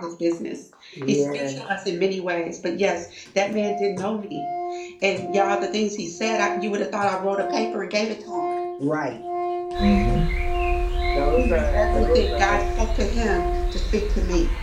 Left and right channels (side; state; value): both; identical; correlation 1.00